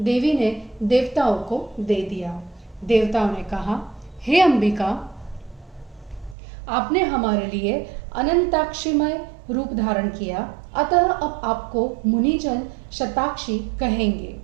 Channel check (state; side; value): drops out; left; at 6.4 s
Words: देवी ने देवताओं को दे दिया। देवताओं ने कहा, हे अंबिका, आपने हमारे लिए अनंताक्षीमय रूप धारण किया, अतः अब आपको मुनिजन शताक्षी कहेंगे।